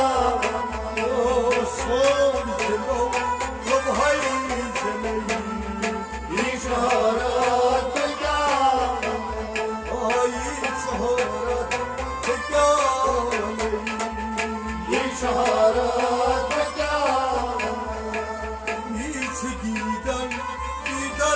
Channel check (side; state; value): both; identical; correlation 1.00